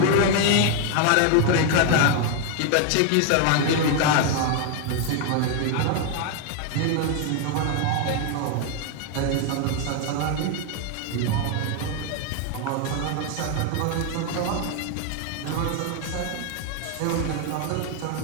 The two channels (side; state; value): both; different; correlation 0.01